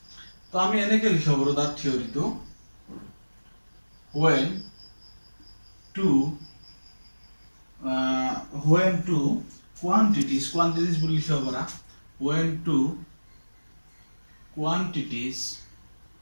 তো আমি এনেকে লিখিব পাৰো তাৰ থিওৰিটো, when two quantities বুলি লিখিব পাৰা, when two quantities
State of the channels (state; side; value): inverted; both; correlation -1.00